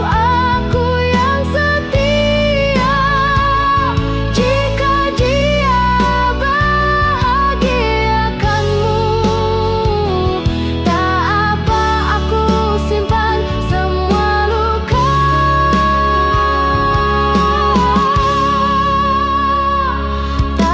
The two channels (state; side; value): identical; both; correlation 1.00